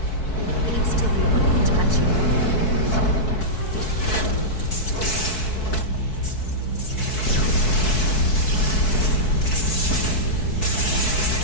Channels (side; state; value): right; late; 4.6 ms